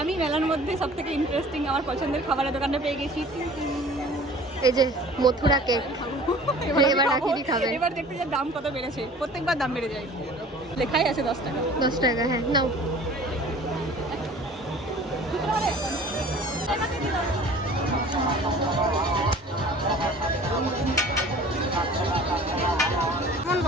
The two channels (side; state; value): both; normal; correlation 0.46